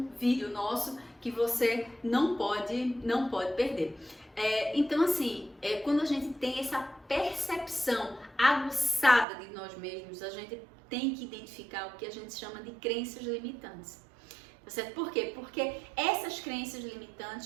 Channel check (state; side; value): drops out; left; at 9.2 s